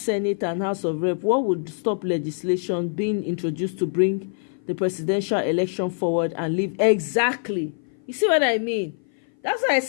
and House of Rep, what would stop legislation being introduced to bring the presidential election forward and leave? Exactly. You see what I mean? That's why I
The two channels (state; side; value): silent; right; 57 dB below the other